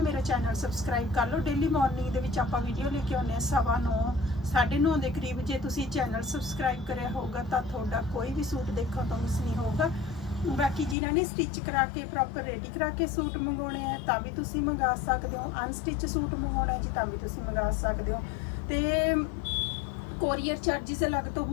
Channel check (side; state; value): right; drops out; at 11.0 s